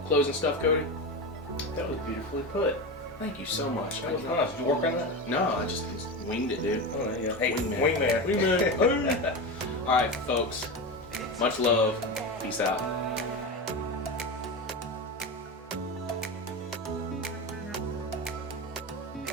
closing stuff, Cody? That was beautifully put. Thank you so much. That was nice. Did you work on that? No, I just winged it, dude. Oh, there you go. Hey, Wingman. Wingman. All right, folks. Much love. Peace out.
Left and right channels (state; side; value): normal; both; correlation 0.21